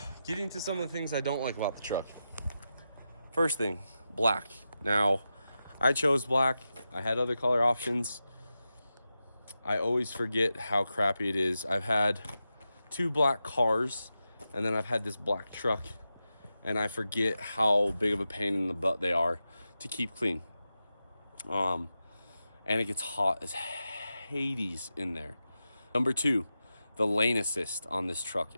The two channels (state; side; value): inverted; both; correlation -0.90